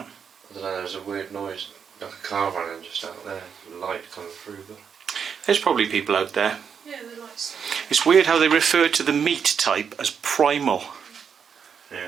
I don't know. There's a weird noise, like a car running just out there, light coming through. But There's probably people out there. Yeah, the lights. It's weird how they refer to the meat type as primal.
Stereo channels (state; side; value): quieter; left; 7.0 dB